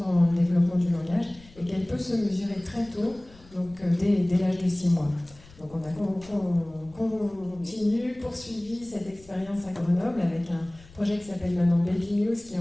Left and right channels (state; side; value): noise; left; rumble, 23 dB below the sound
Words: le développement du langage et qu'elle peut se mesurer très tôt, donc dès l'âge de 6 mois. Donc on a poursuivi cette expérience à Grenoble avec un projet qui s'appelle maintenant Baby News qui est